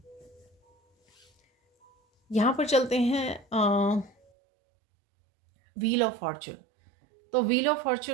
यहाँ पर चलते हैं व्हील ऑफ फॉर्चून। तो व्हील ऑफ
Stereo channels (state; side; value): drops out; left; at 4.2 s